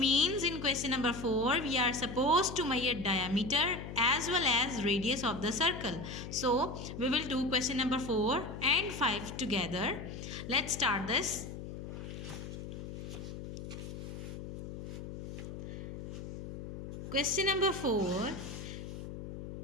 in question number 4 we are supposed to measure diameter as well as radius of the circle. So we will do question number 4 and 5 together. Let's start this. Question number 4,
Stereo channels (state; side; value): noise; left; hum, 9 dB below the sound